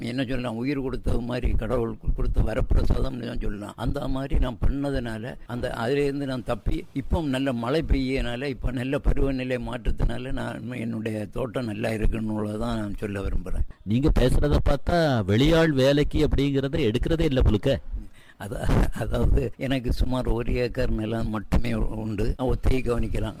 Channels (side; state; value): both; identical; correlation 1.00